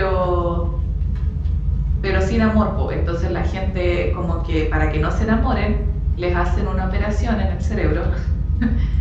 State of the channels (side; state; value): both; identical; correlation 1.00